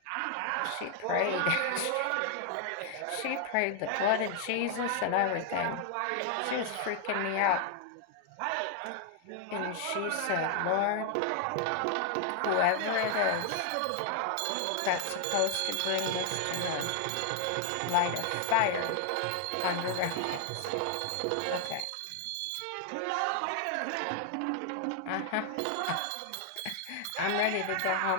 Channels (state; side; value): different; both; correlation 0.00